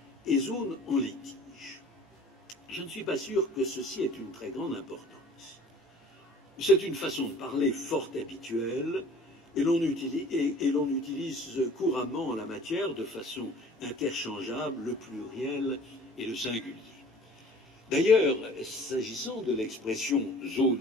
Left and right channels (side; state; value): both; normal; correlation 0.48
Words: et zones en litige. Je ne suis pas sûr que ceci ait une très grande importance. C'est une façon de parler fort habituelle et l'on utilise couramment en la matière de façon interchangeable le pluriel et le singulier. D'ailleurs, s'agissant de l'expression